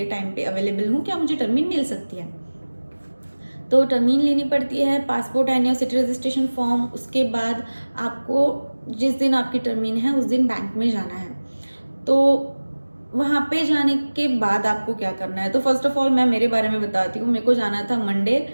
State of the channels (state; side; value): inverted; both; correlation -1.00